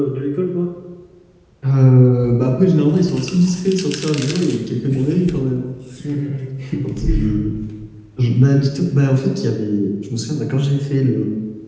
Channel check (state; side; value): identical; both; correlation 1.00